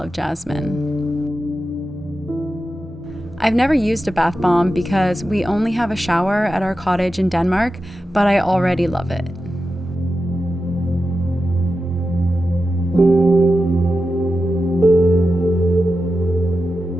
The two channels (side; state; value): both; normal; correlation 0.91